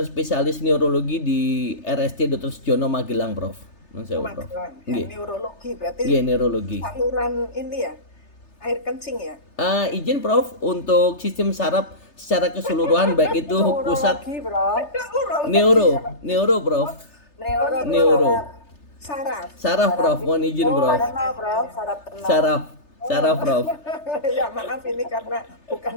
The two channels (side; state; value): right; late; 3.3 ms